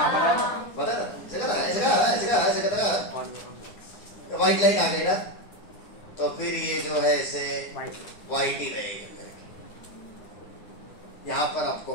पता है व्हाइट लाइट आ गई ना तो फिर ये जो है ऐसे व्हाइट ही रहेगा, यहाँ पर आपको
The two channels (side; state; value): right; late; 9.5 ms